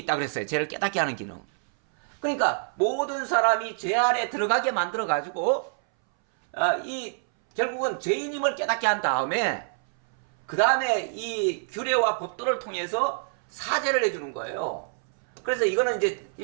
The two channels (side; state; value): left; silent; 61 dB below the other